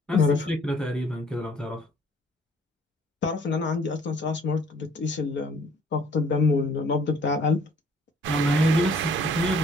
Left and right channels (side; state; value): both; normal; correlation 0.59